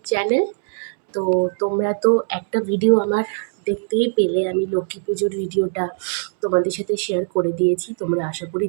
channel. তো তোমরা তো একটা ভিডিও আমার দেখতেই পেলে, আমি লক্ষ্মী পুজোর ভিডিওটা তোমাদের সাথে শেয়ার করে দিয়েছি, তোমরা আশা করি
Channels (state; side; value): silent; left; digital silence